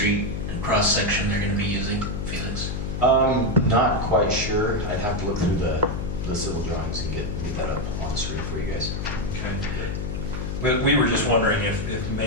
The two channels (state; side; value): noise; left; hum, 4 dB below the sound